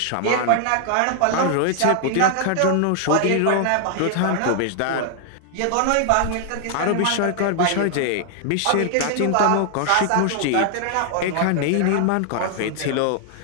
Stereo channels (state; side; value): different; both; correlation 0.00